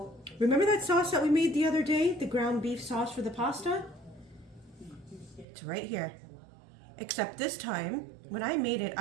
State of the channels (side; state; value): left; drops out; at 5.5 s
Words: remember that sauce that we made the other day, the ground beef sauce for the pasta? It's right here. Except this time, when I made it,